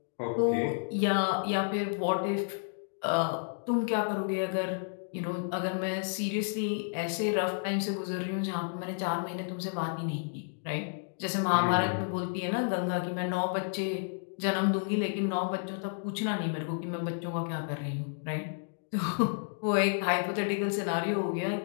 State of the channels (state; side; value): silent; right; digital silence